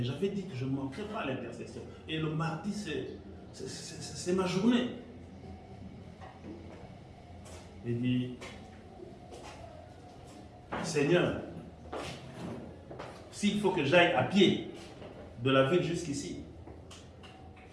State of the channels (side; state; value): both; identical; correlation 1.00